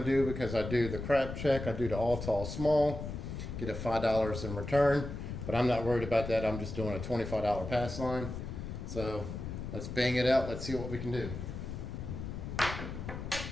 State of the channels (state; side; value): noise; left; rumble, 7 dB below the sound